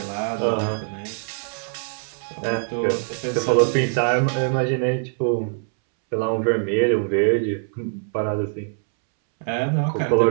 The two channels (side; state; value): left; silent; 63 dB below the other